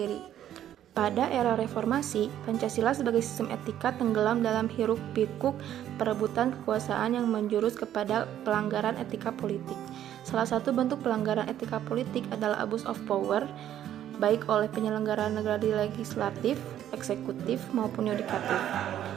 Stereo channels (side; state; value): left; quieter; 11.2 dB